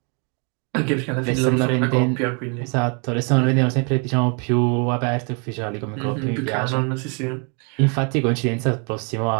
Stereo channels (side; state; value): left; quieter; 36.3 dB